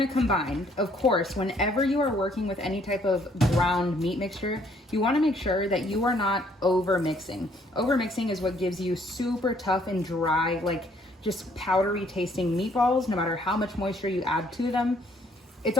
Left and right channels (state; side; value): normal; both; correlation 0.65